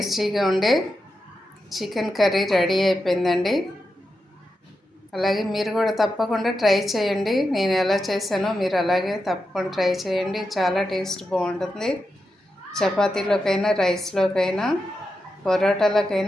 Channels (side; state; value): both; normal; correlation 0.88